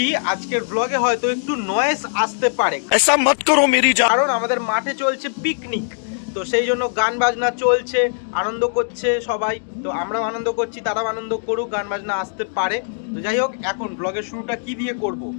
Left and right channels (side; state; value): right; silent; digital silence